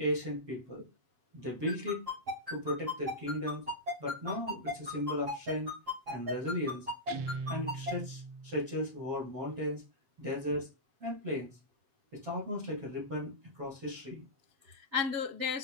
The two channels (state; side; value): late; left; 7.8 ms